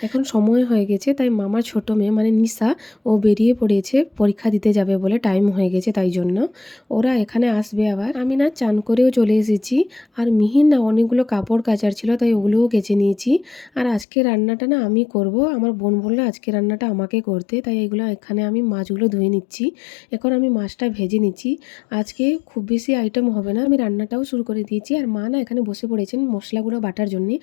এখন সময় হয়ে গেছে তাই মামার ছোট মেয়ে মানে নিশা ও বেরিয়ে পড়েছে পরীক্ষা দিতে যাবে বলে, টাইম হয়ে গেছে তাই জন্য। ওরা এখানে আসবে আবার। আমি না চান করেও চলে এসেছি আর মিহির না অনেকগুলো কাপড় কাচার ছিল তাই ওগুলোও কেচে নিয়েছি। আর আজকে রান্নাটা না আমি করব, আমার বোন বললো আজকে রান্নাটা আমাকে করতে, তাই এগুলো এখানে আমি মাছগুলো ধুয়ে নিচ্ছি। এখন আমি মাছটা ভেজে নিচ্ছি। আজকে খুব বেশি আইটেম হবে না, আমি রান্নাটাও শুরু করে দিয়েছি। আর মা না এখানে বসে পড়েছেন মশলাগুলো বাটার জন্যে,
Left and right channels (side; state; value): right; drops out; at 14.1 s